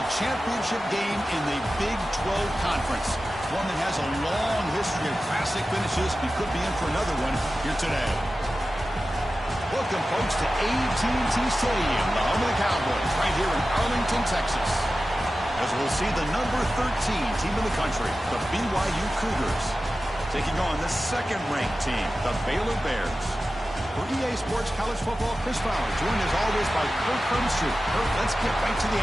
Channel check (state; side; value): normal; both; correlation 0.94